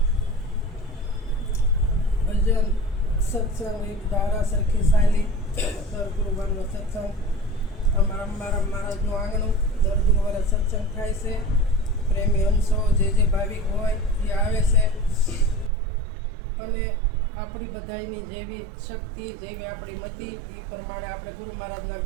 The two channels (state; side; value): drops out; left; at 15.7 s